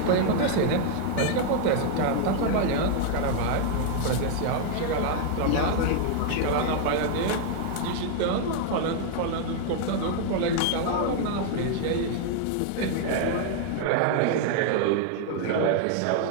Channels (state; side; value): different; both; correlation 0.00